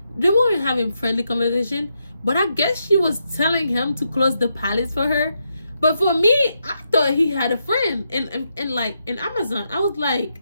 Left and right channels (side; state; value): both; inverted; correlation -0.82